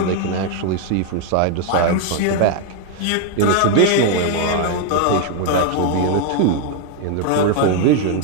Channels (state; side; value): different; both; correlation 0.01